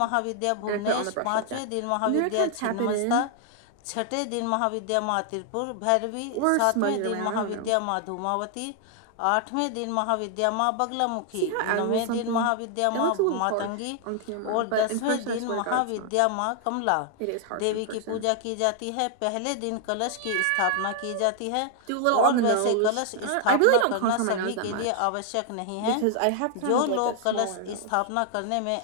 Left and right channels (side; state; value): both; different; correlation 0.00